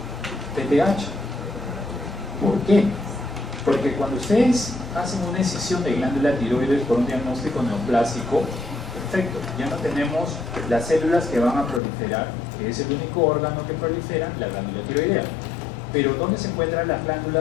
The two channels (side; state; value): right; drops out; at 11.8 s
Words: PTH. ¿Por qué? Porque cuando ustedes hacen una excisión de glándula tiroides por un diagnóstico neoplásico, perfecto, ya no tenemos las células que van a proliferar, que es el único órgano que prolifera, la glándula tiroidea. Pero ¿dónde se encuentran las